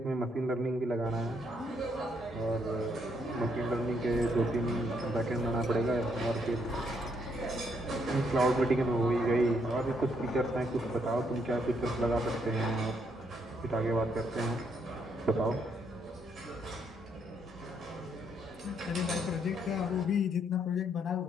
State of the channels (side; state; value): both; normal; correlation 0.73